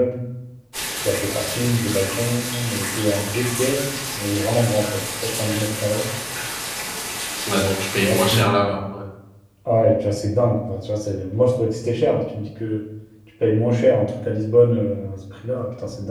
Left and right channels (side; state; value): both; identical; correlation 1.00